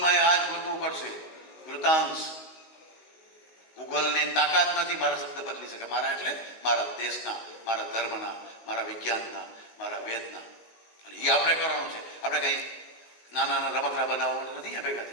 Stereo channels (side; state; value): right; late; 19 ms